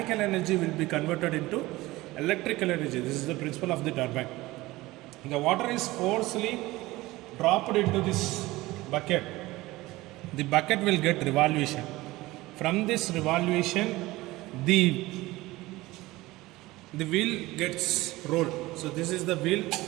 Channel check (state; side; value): quieter; left; 19.2 dB